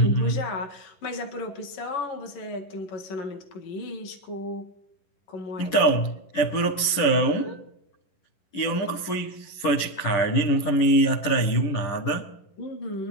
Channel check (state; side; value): late; right; 11 ms